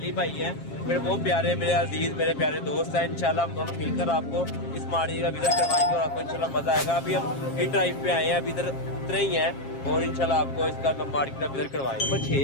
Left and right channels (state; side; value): late; right; 7.4 ms